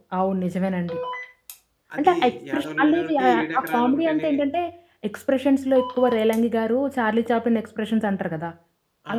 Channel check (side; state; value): both; identical; correlation 1.00